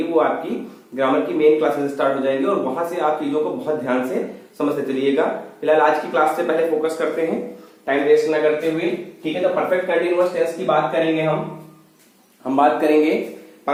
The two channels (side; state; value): both; identical; correlation 1.00